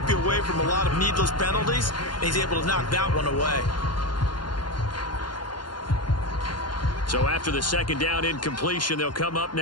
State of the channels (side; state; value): right; late; 0.71 ms